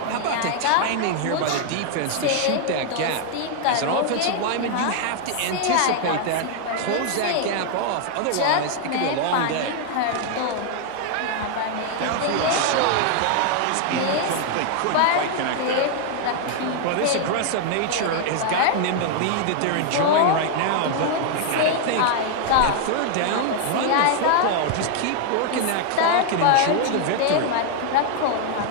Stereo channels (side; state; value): both; different; correlation 0.00